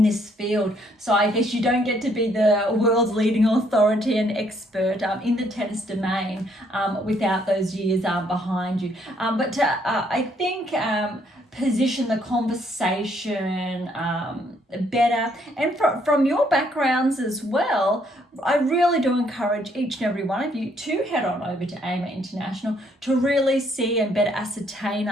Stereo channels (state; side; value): normal; both; correlation 0.68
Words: this field. So I guess you don't get to be the world's leading authority and expert in the tennis domain without those years behind you. But to, I think, position the conversation better, and from your backgrounds as well, I really do encourage each and every one of you to head on over to AM8 International to really see and better ascertain,